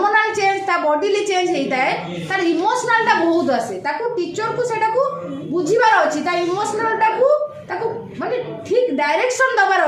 ଚେଞ୍ଜ ତା ବଡିଲି ଚେଞ୍ଜ ହେଇଥାଏ ତାର ଇମୋସନାଲ୍ଟା ବହୁତ ଆସେ ତାକୁ ଟିଚରକୁ ସେଇଟାକୁ ବୁଝିବାର ଅଛି ତା ଇମୋସନାଲ୍ଟାକୁ ତାକୁ ମାନେ ଠିକ୍ ଡାଇରେକ୍ସନ୍ ଦେବାର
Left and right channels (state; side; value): identical; both; correlation 1.00